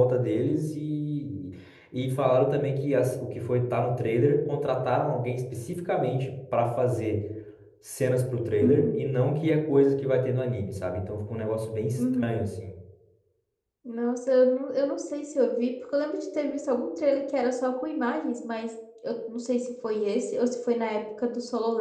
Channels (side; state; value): both; identical; correlation 1.00